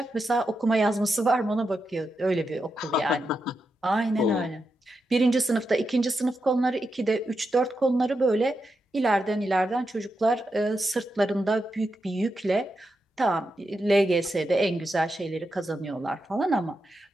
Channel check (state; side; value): normal; both; correlation 0.87